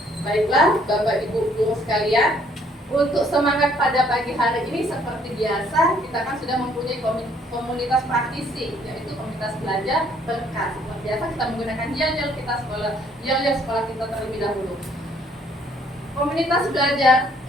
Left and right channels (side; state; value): both; normal; correlation 0.63